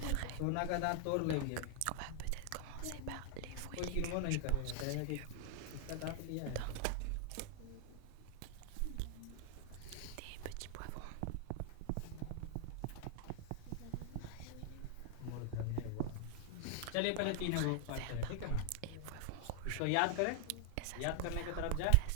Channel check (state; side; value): different; both; correlation 0.00